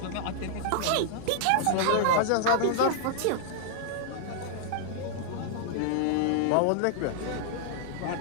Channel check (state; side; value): different; both; correlation -0.01